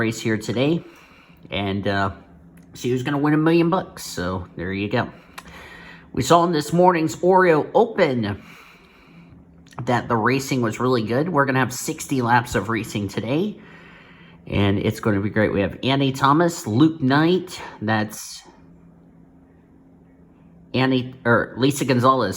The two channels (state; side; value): identical; both; correlation 1.00